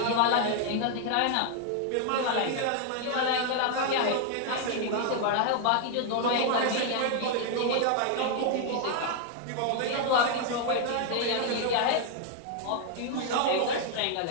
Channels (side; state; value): both; different; correlation 0.00